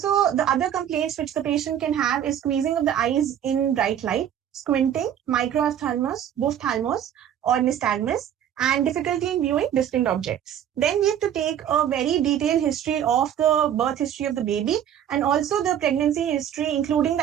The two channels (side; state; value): left; quieter; 9.9 dB